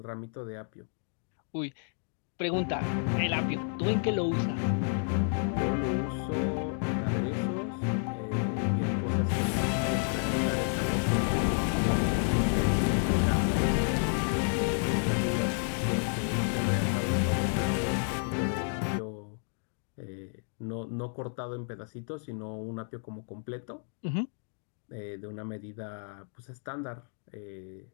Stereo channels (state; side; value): silent; right; 55 dB below the other